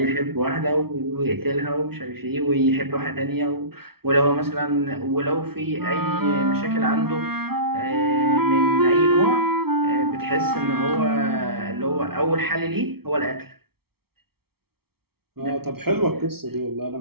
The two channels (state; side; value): late; left; 0.95 ms